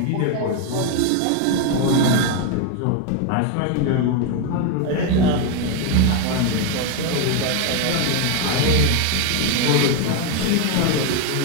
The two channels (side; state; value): both; different; correlation 0.01